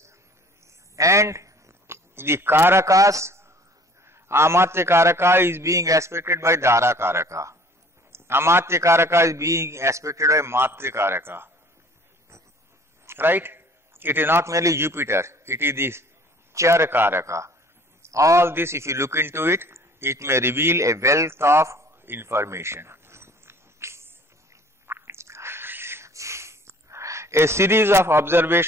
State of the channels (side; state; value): both; normal; correlation 0.52